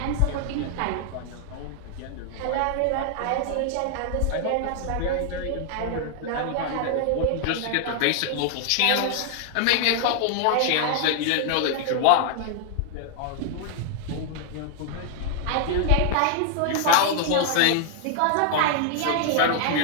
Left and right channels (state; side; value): different; both; correlation 0.00